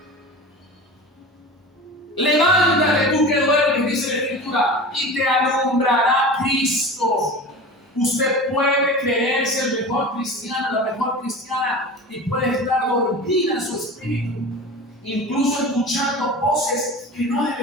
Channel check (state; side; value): normal; both; correlation 0.33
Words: Levántate tú que duermes, dice la Escritura, y te alumbrará Cristo. Usted puede creerse el mejor cristiano, la mejor cristiana, y puede estar dormida en su espíritu, incluso escuchando voces que no